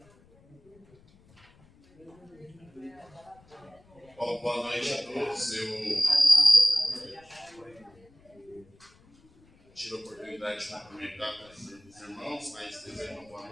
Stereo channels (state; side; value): noise; left; rumble, 28 dB below the sound